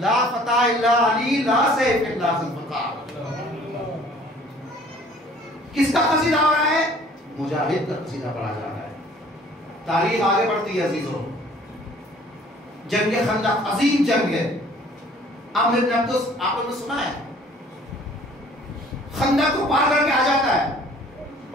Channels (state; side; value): normal; both; correlation 0.54